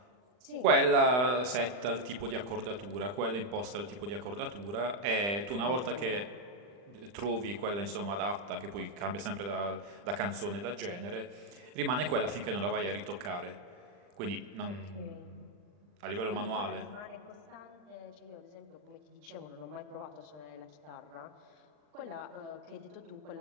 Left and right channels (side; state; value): left; late; 40 ms